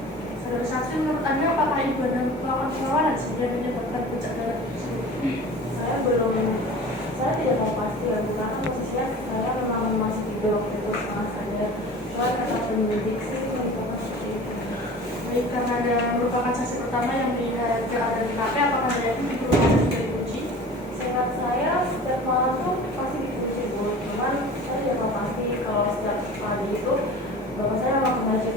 Saudara saksi, menurut Anda apakah ibu Anda melakukan perlawanan sehingga menyebabkan puncak darah tersebut? Saya tidak tahu pasti ya, karena posisinya saya memang masih tidur waktu itu setengah sadar. Cuma kata penyidik sih merupakan seperti itu. Baik, karena Anda merupakan saksi pertama yang melihat keadaan di TKP, apakah Anda yakin pintu rumahnya sudah dikunci? Seingat saya setiap malam tuh pasti dikunci Bu. Cuman saya tidak tahu pasti kalau setiap pagi itu bapak saya memang ke masjid,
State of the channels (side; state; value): both; normal; correlation 0.39